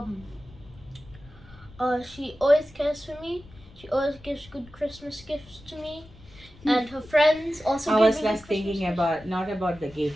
she always cares for me. She always gives good Christmas gifts to me, and her friends also I give was me less good Christmas thinking gifts. about not about the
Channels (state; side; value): noise; left; rumble, 22 dB below the sound